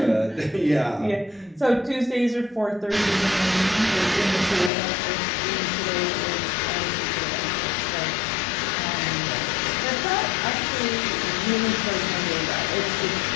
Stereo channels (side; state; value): right; drops out; at 4.7 s